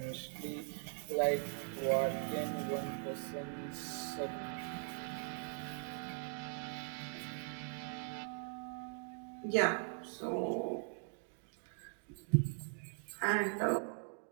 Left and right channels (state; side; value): silent; left; 51 dB below the other